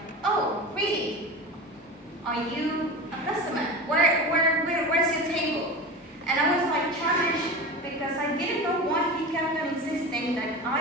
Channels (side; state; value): both; normal; correlation 0.28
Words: "Oh, really? Are you a customer? Where's your table?" And I was like challenged because I didn't know why he kept on insisting that